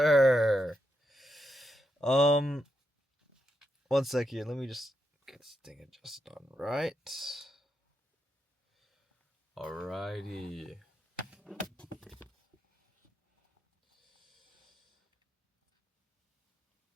One sec here. Let me just get this thing adjusted on right. Alrighty.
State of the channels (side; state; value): both; normal; correlation 0.83